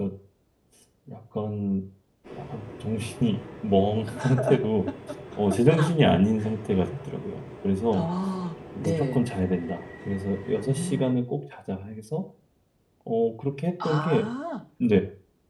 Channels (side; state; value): both; identical; correlation 1.00